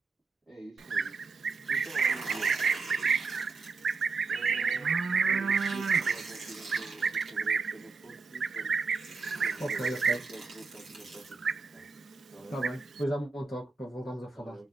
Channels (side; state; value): left; quieter; 4.6 dB